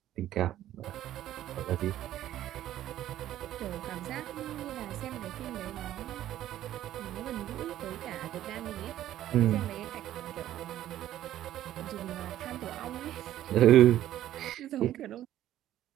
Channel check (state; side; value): quieter; left; 12.7 dB